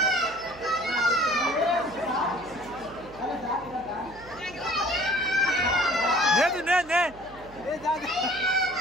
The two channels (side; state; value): right; noise; hum, 21 dB below the sound